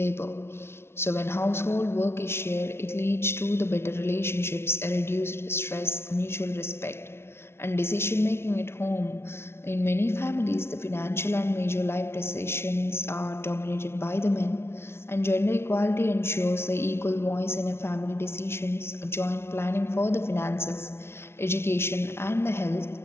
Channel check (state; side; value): late; right; 0.12 ms